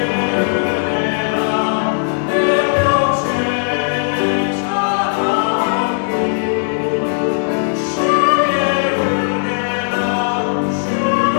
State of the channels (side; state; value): right; silent; digital silence